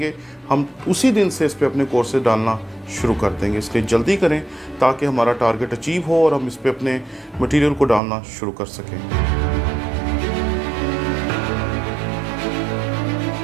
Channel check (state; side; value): drops out; left; at 8.0 s